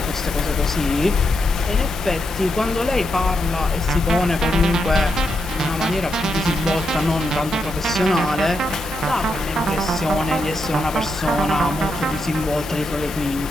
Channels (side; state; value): both; normal; correlation 0.83